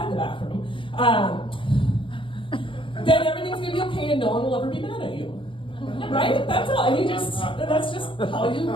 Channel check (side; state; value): right; late; 0.25 ms